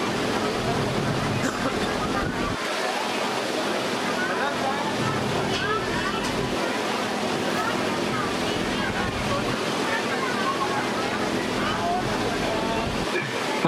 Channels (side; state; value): both; identical; correlation 1.00